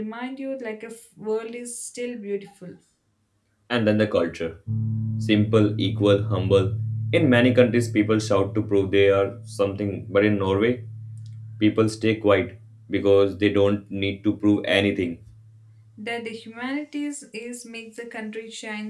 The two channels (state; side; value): identical; both; correlation 1.00